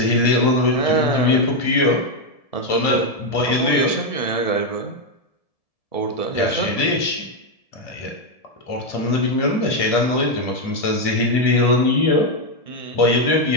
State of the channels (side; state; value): right; late; 1.7 ms